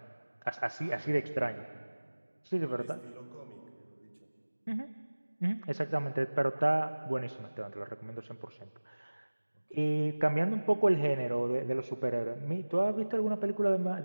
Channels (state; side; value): inverted; both; correlation -1.00